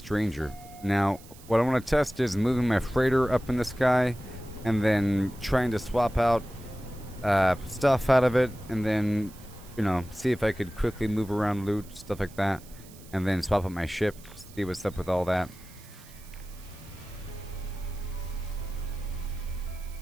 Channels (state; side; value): noise; right; hiss, 22 dB below the sound